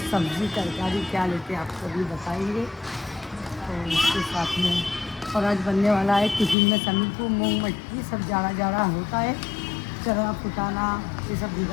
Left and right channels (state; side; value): drops out; right; at 6.6 s